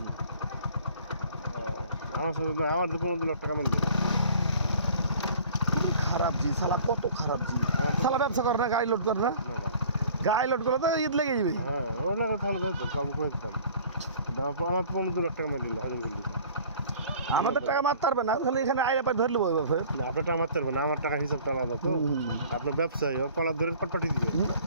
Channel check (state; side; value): inverted; both; correlation -0.49